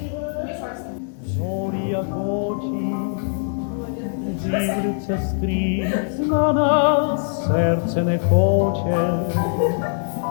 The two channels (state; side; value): silent; right; digital silence